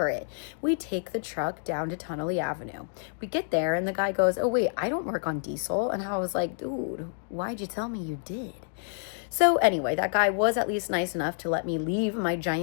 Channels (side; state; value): right; silent; digital silence